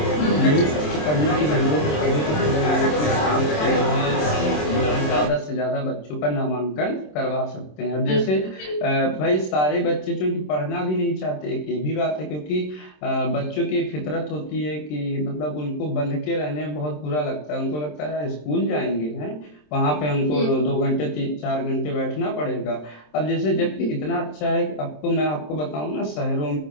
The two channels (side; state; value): right; late; 27 ms